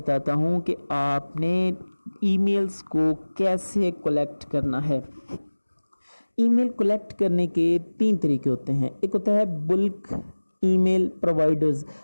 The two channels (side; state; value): both; inverted; correlation -1.00